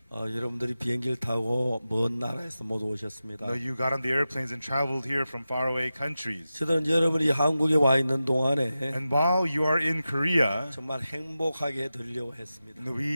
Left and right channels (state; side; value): inverted; both; correlation -0.93